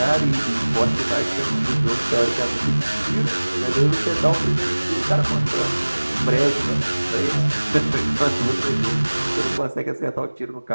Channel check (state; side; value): inverted; both; correlation -1.00